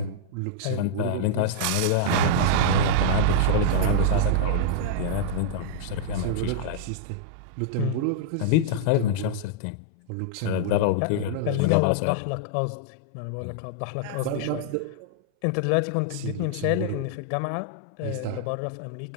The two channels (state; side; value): different; both; correlation -0.02